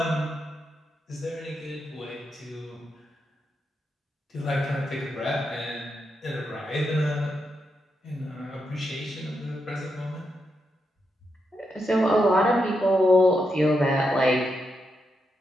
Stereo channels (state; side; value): normal; both; correlation 0.84